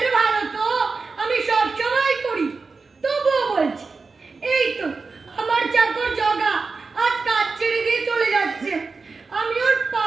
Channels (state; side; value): quieter; left; 4.3 dB